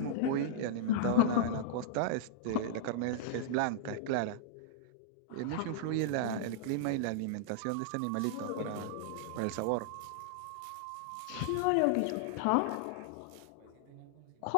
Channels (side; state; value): both; different; correlation -0.02